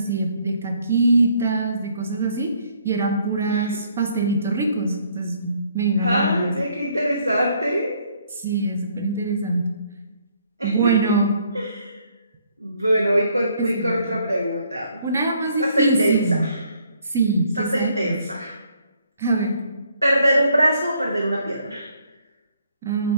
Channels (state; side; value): inverted; both; correlation -0.66